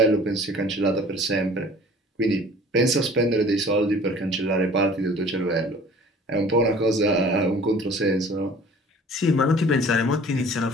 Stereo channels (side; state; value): both; normal; correlation 0.48